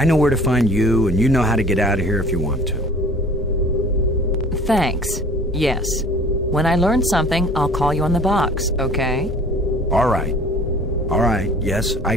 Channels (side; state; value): both; normal; correlation 0.47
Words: know where to find you, and you know how to get out of here if you want to. Thanks. Yes. When I learn something, I'll call you on the box, okay? All right. All right, yes,